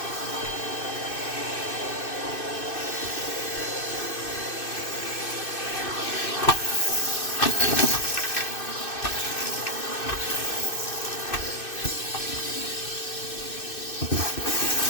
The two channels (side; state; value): right; late; 2.6 ms